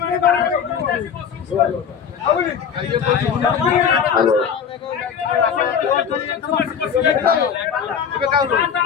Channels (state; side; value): quieter; right; 7.4 dB